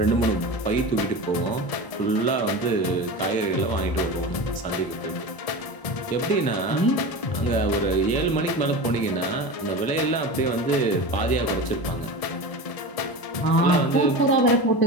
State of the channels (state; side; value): late; right; 1.0 ms